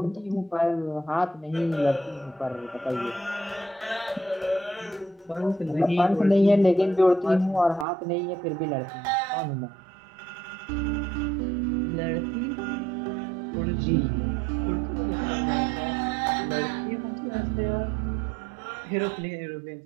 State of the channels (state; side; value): drops out; left; at 7.9 s